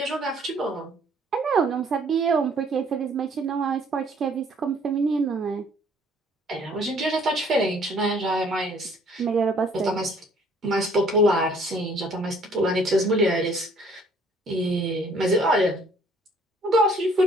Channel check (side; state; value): both; normal; correlation 0.60